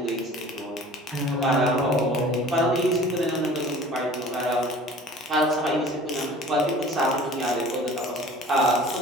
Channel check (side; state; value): both; normal; correlation 0.45